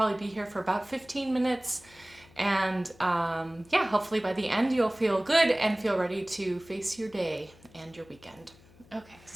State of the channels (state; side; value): noise; left; hum, 26 dB below the sound